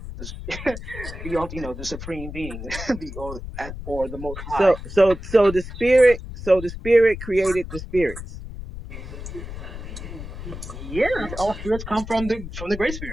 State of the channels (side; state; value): left; noise; rumble, 10 dB below the sound